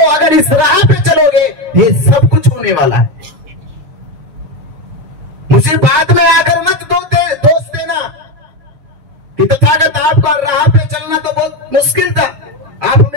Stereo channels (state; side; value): late; left; 7.1 ms